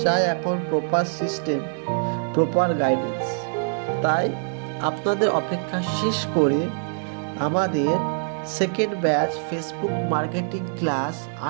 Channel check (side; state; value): left; silent; digital silence